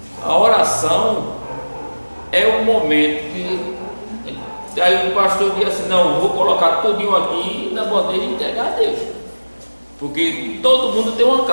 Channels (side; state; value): both; inverted; correlation -1.00